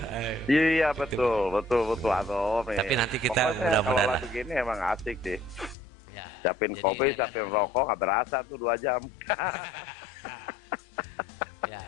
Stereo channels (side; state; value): right; drops out; at 5.8 s